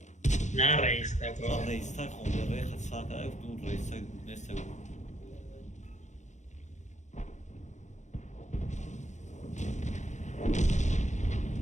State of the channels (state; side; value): late; right; 0.34 ms